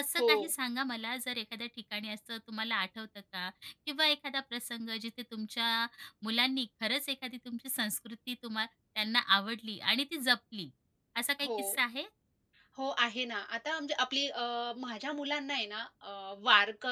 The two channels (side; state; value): both; identical; correlation 1.00